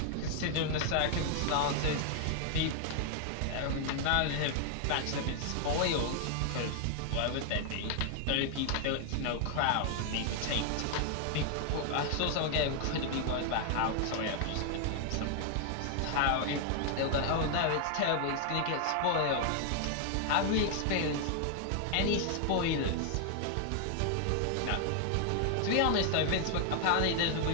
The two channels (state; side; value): different; both; correlation 0.00